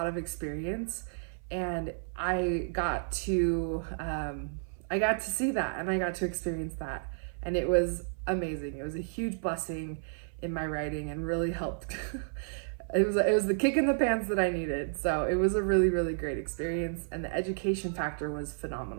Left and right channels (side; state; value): left; silent; 56 dB below the other